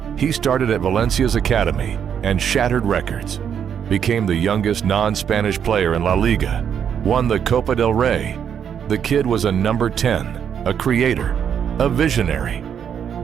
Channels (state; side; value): quieter; left; 8.3 dB